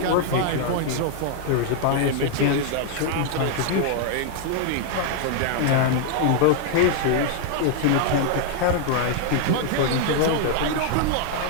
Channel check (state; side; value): different; both; correlation 0.00